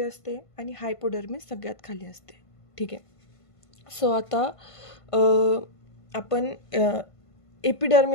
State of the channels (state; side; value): late; right; 1.5 ms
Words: असते आणि हायपोडर्मिस सगळ्यात खाली असते. ठीक आहे. सो आता आपण